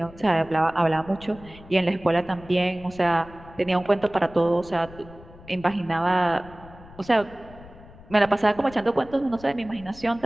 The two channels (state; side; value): noise; left; rumble, 20 dB below the sound